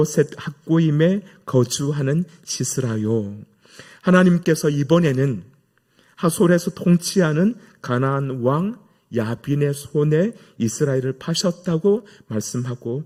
학고임에 거주하는 시스라요. 하나님께서 이번에는 하솔에서 통치하는 가나안 왕 야빈의 손에 이스라엘을 파셨다고 말씀하고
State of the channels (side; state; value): both; identical; correlation 1.00